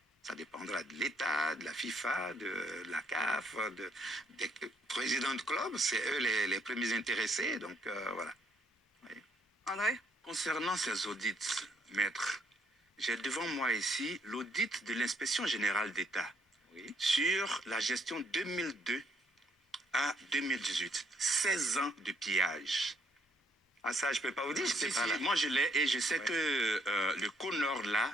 Ça dépendra de l'État, de la FIFA, de la CAF, des présidents de club. C'est eux les premiers intéressés. Donc, voilà. Oui. André? Concernant ces audits, maître, j'ai devant moi ici l'audit de l'inspection générale d'État sur la gestion 2002 à 2018. 16 ans de pillage. Ah ça, je ne peux pas vous dire, Moi, je l'ai et je sais que le CONOR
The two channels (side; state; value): both; normal; correlation 0.70